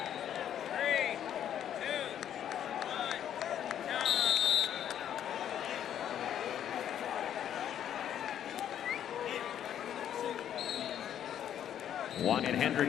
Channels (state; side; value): quieter; right; 10.1 dB